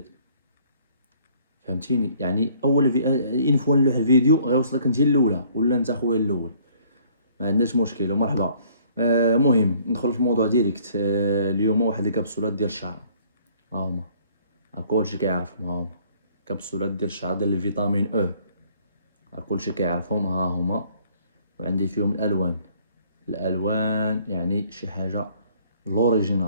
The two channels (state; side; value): inverted; both; correlation -0.59